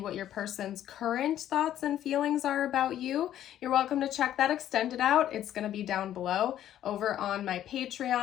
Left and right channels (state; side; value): quieter; right; 11.6 dB